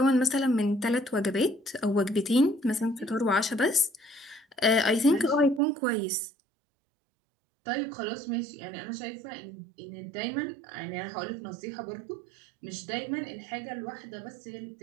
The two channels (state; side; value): drops out; left; at 5.6 s